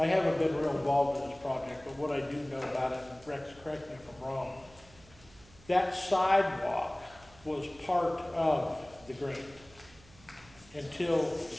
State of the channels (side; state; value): right; noise; hum, 24 dB below the sound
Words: haven't been real involved in this project, but what I do know about it, and Rex, correct me if I'm wrong, that sidewalk was part of the grant until